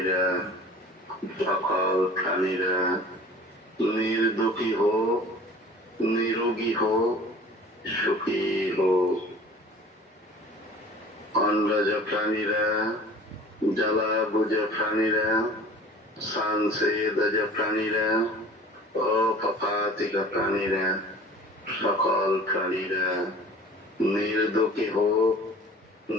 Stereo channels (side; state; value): both; normal; correlation 0.45